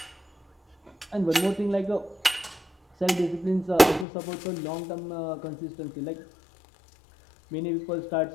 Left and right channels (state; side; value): drops out; right; at 4.0 s